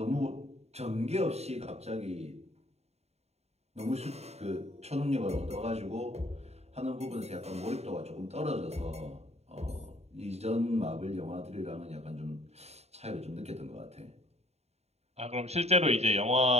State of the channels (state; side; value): late; left; 0.31 ms